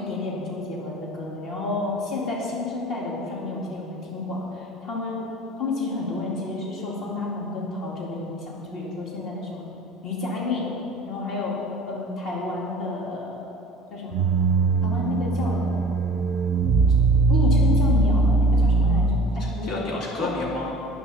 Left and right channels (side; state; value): both; normal; correlation 0.43